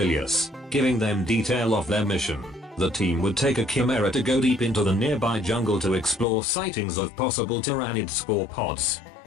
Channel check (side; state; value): right; drops out; at 6.2 s